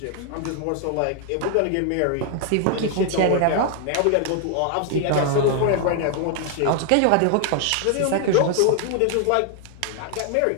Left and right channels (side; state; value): both; different; correlation 0.00